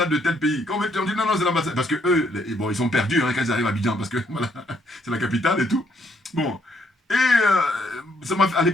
de tel pays. Quand on dit non, non, c'est l'ambassade. Parce que eux, bon, ils sont perdus hein, quand ils arrivent à Abidjan, parce que voilà, c'est la capitale et tout. Bon. Et à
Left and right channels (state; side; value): normal; both; correlation 0.71